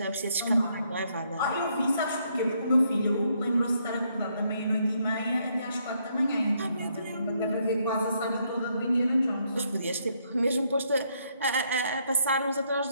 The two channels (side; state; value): both; inverted; correlation -0.73